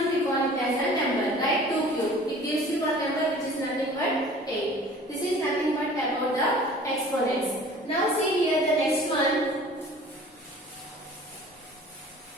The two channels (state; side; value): normal; both; correlation 0.47